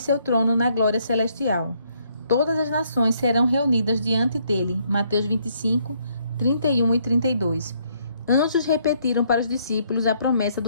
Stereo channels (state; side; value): inverted; both; correlation -0.70